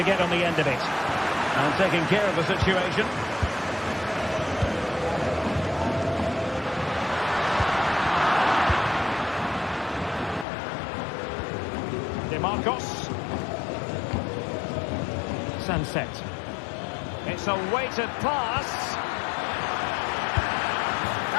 get on the end of it? And taking care of the situation. Marcos. Sunset. It's a weighted pass.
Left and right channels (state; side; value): drops out; right; at 10.5 s